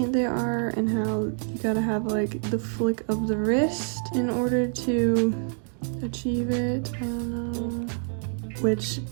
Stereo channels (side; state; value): left; silent; digital silence